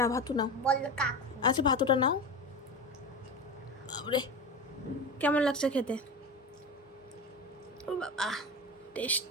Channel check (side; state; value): both; normal; correlation 0.26